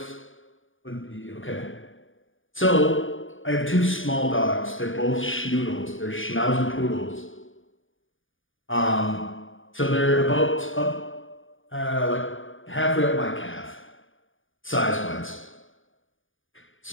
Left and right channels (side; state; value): right; late; 0.57 ms